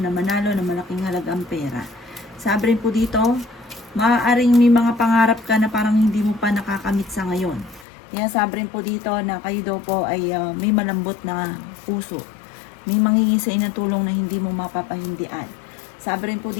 manalo na malaking halagang pera. Sabi rin po dito, maaaring may mga pangarap ka na parang hindi mo pa nakakamit sa ngayon. Kaya sabi rin po dito na kayo daw po ay may malambot na puso. May manghingi sa inyo ng tulong na hindi mo mapapahindian. Sabi rin po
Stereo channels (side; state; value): right; drops out; at 7.9 s